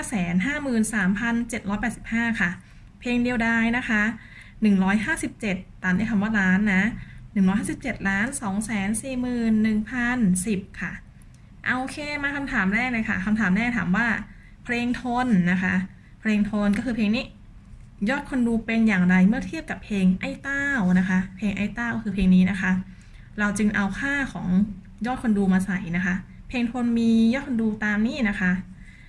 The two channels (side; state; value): both; identical; correlation 1.00